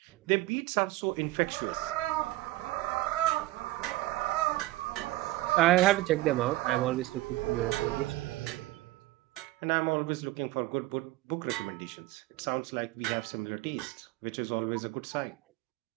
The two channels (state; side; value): quieter; left; 17.7 dB